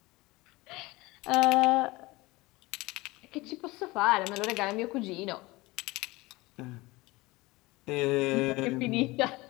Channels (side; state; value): right; quieter; 21.6 dB